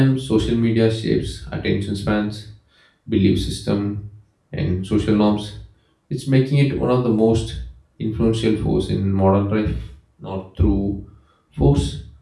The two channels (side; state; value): both; identical; correlation 1.00